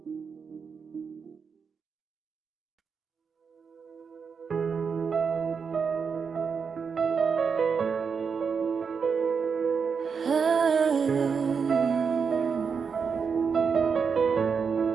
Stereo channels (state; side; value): quieter; left; 5.9 dB